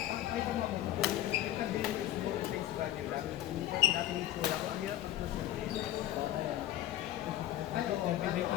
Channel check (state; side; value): quieter; right; 13.4 dB